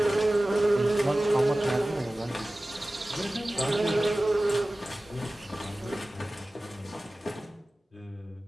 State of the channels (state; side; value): normal; both; correlation 0.97